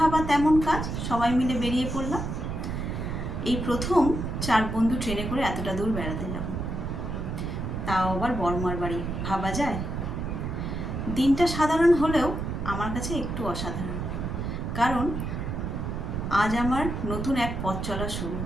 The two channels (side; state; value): right; noise; rumble, 4 dB below the sound